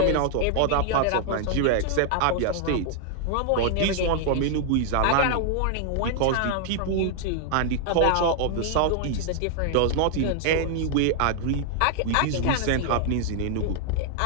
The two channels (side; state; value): both; different; correlation 0.00